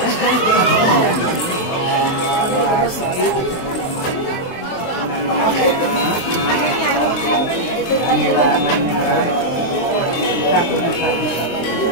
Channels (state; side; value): late; right; 23 ms